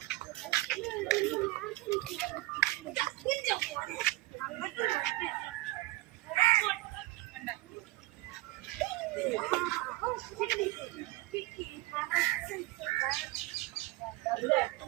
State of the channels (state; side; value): quieter; left; 19.9 dB